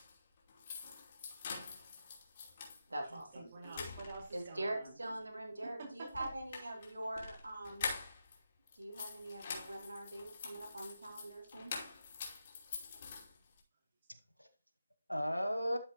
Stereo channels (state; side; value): inverted; both; correlation -0.87